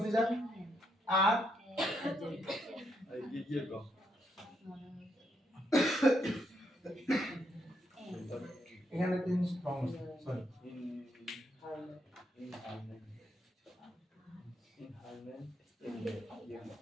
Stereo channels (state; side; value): normal; both; correlation 0.77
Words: দিয়ে যান, আর এখানে তিন সরি